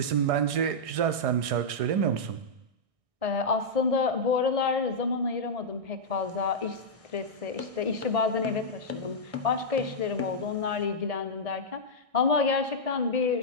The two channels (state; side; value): late; left; 1.6 ms